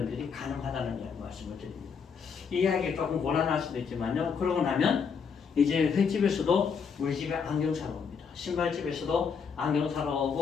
가능하다는 말씀을 드립니다. 이 이야기가 조금 곤란할 수도 있지만요. 그러고 나면 이제 횟집에서도 우리 집에 안경 사러 옵니다. 신발집에서도 안경 사러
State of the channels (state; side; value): quieter; right; 6.1 dB